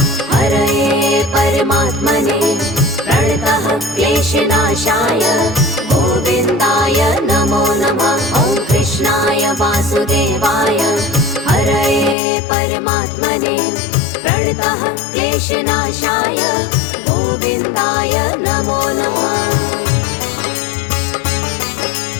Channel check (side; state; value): right; drops out; at 12.2 s